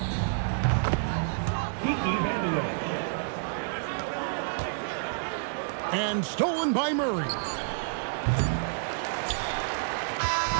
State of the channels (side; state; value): left; silent; 59 dB below the other